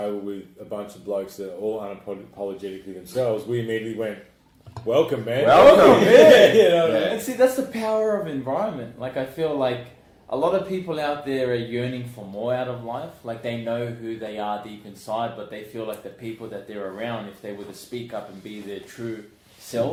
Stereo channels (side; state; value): both; identical; correlation 1.00